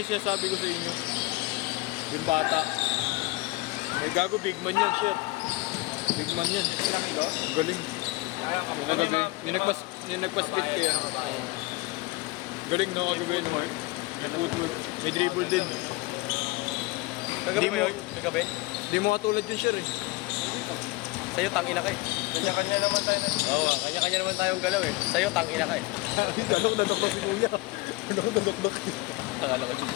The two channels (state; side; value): quieter; right; 22.0 dB